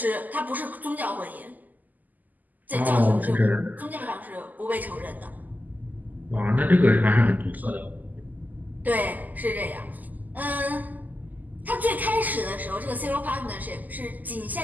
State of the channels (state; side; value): late; left; 0.082 ms